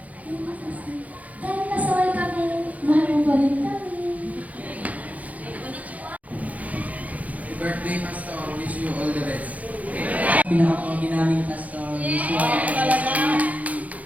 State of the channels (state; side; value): late; left; 0.073 ms